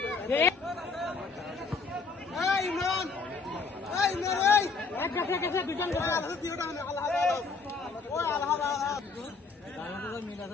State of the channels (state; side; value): quieter; right; 4.4 dB